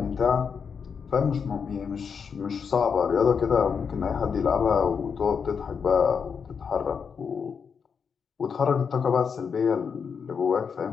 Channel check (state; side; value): quieter; right; 6.3 dB